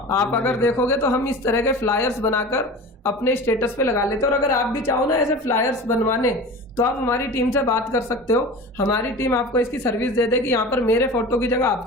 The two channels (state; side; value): normal; both; correlation 0.35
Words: आप अगर देखोगे तो हम इस तरह के फ्लायर्स बनाकर अपने स्टेटस पे लगा लेते हैं। और अगर आप भी चाहो ना ऐसे फ्लायर्स बनवाने तो आप हमारी टीम से बात कर सकते हो, हमारी टीम आपको इसकी सर्विस दे देगी। यहाँ पर मेरे फोटो की जगह